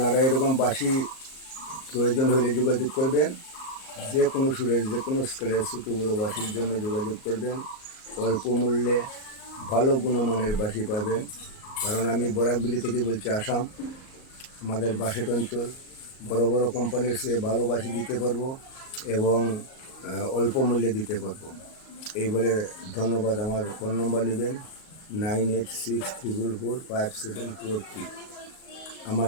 এরকম বাঁশি প্রয়োজন হলে যোগাযোগ করবেন। যে কোনো সুরের, যে কোনো স্কেলের ছোটো বড়ো বাঁশির জন্য যোগাযোগ করবেন। অল্প মূল্যে ভালো গুণমানের বাঁশি পাবেন। কারণ আমি বরাকবিলি থেকে বলছি, আসাম। আমাদের বাঁশেট অঞ্চল, বড় বড় কোম্পানির চেয়ে ভালো বাঁশি দিতে পারবো এবং অল্প মূল্যে দিতে পারবো। এই বলে ধন্যবাদ। আমার ফোন নম্বর নেবেন 9864445743। আমার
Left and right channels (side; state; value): right; late; 38 ms